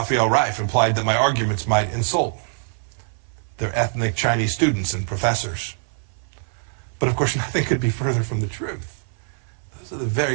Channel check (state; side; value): silent; left; 56 dB below the other